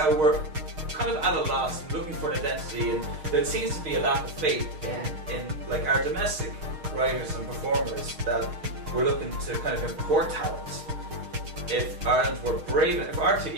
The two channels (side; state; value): left; late; 6.5 ms